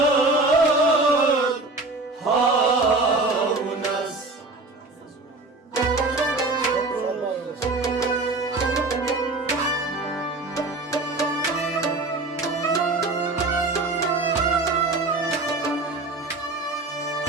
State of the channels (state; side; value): quieter; left; 3.2 dB